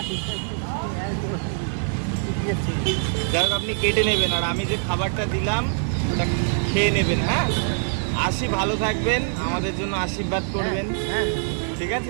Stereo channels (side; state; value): left; silent; digital silence